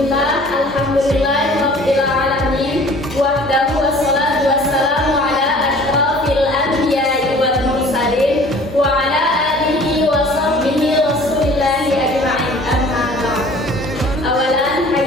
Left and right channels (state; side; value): normal; both; correlation 0.48